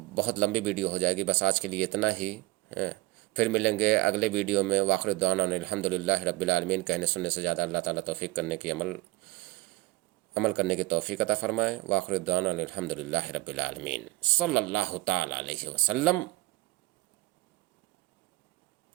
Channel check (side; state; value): left; quieter; 21.6 dB